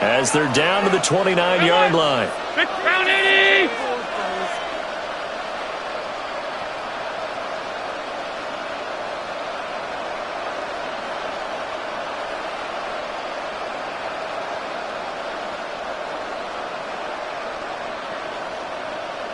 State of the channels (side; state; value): both; identical; correlation 1.00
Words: as they're down to the 29-yard line. Down 80!